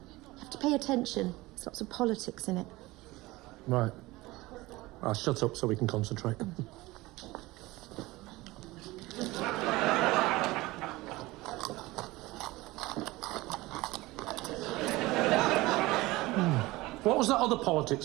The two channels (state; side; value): quieter; left; 20.1 dB